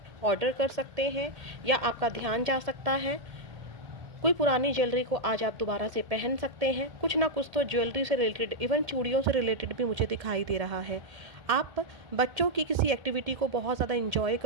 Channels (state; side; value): late; left; 1.8 ms